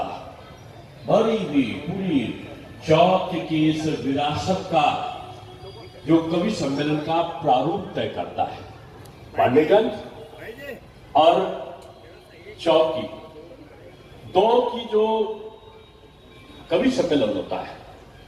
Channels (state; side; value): identical; both; correlation 1.00